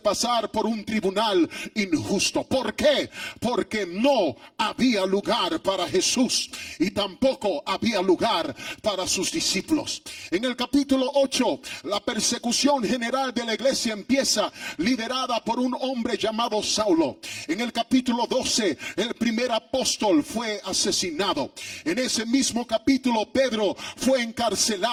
pasar por un tribunal injusto. ¿Por qué? Porque no había lugar para Jesús y tampoco había lugar para sus discípulos. En el capítulo 8, la persecución general de la iglesia empieza, liderada por un hombre llamado Saulo. En el capítulo 12, el primer apóstol fue asesinado. En ese mismo capítulo, Pedro fue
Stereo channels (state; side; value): identical; both; correlation 1.00